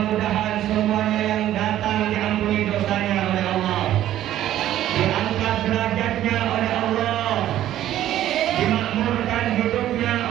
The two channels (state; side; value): quieter; left; 12.7 dB